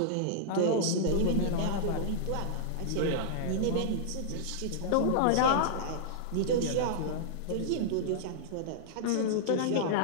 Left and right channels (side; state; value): both; different; correlation -0.02